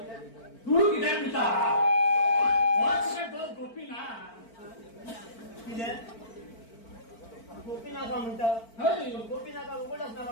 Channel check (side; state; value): right; late; 4.5 ms